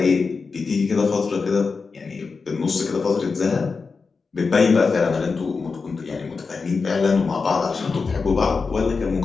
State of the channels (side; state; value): right; quieter; 4.7 dB